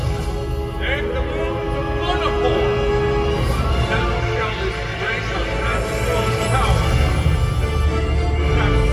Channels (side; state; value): both; identical; correlation 1.00